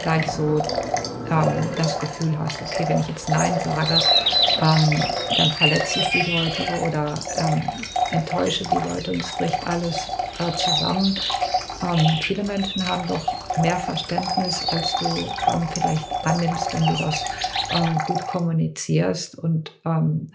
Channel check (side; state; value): both; identical; correlation 1.00